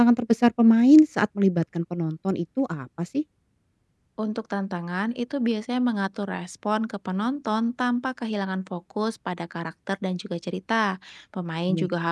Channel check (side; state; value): both; identical; correlation 1.00